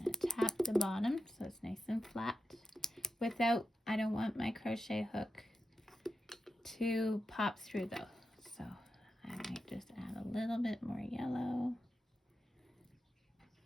to tap the bottom so it's nice and flat without, I don't want my crochet hook to pop through though. So I might just add a little bit more yellow.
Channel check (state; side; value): normal; both; correlation 0.90